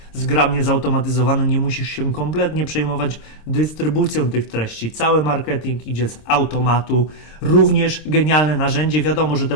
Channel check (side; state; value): right; late; 26 ms